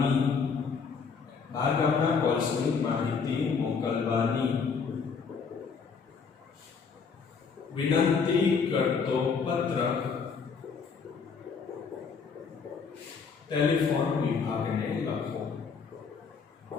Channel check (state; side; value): quieter; right; 5.6 dB